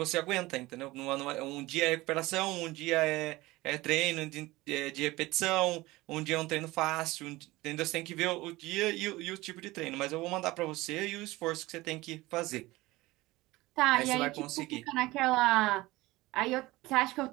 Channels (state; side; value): quieter; left; 19.7 dB